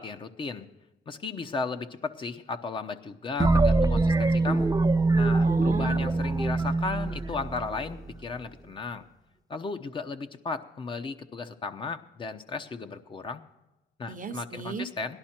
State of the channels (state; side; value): normal; both; correlation 0.80